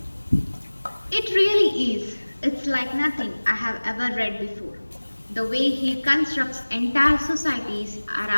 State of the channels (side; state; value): both; inverted; correlation -1.00